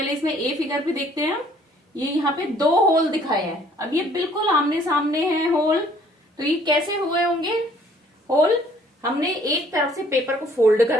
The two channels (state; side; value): normal; both; correlation 0.60